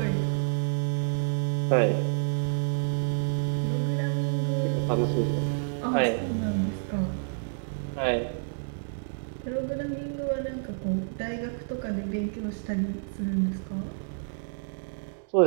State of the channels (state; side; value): silent; left; digital silence